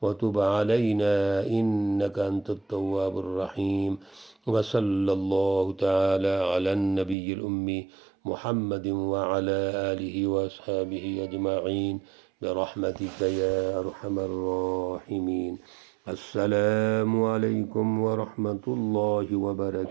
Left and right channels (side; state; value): left; drops out; at 7.2 s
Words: وتب علینا انك انت التواب الرحیم، وصلی اللہ تعالی علی النبی الامی محمد وعلی آلہ واصحابہ اجمعین برحمتک یا ارحم الراحمین۔ السلام علیکم ورحمۃ اللہ